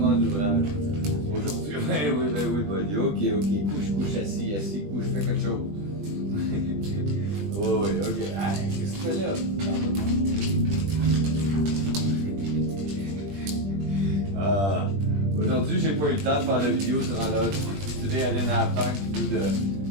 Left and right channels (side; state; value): left; late; 20 ms